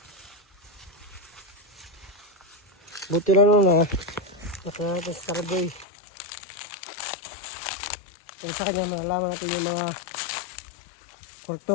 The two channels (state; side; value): drops out; right; at 5.9 s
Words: Buti lang nun nakita natin sa Starboy. Kaya sa kanya malalaman natin yung mga